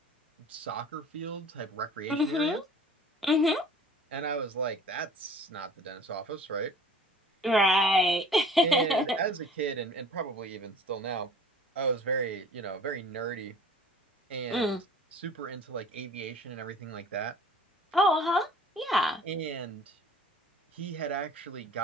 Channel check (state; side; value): normal; both; correlation 0.47